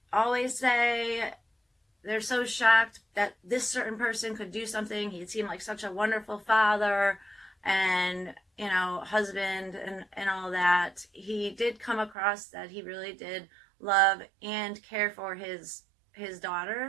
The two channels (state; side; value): drops out; left; at 12.2 s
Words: always say they're so shocked that this certain person could do something. He seemed like such a wonderful father and husband and all that. He did come across that he really did love and care for his